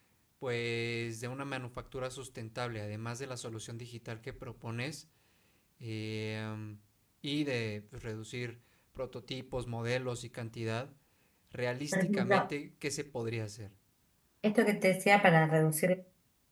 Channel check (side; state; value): both; identical; correlation 1.00